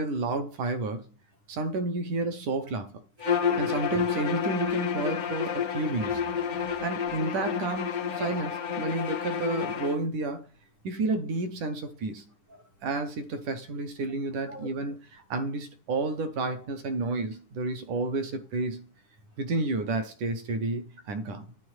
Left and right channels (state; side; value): late; left; 10 ms